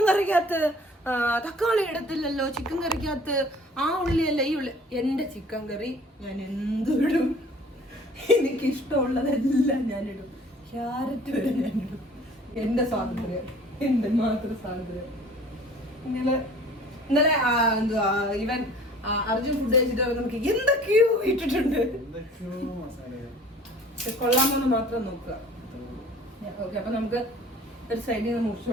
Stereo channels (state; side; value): normal; both; correlation 0.49